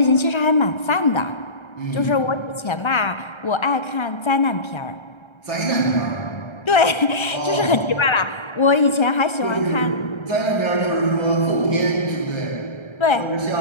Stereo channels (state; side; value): late; right; 1.3 ms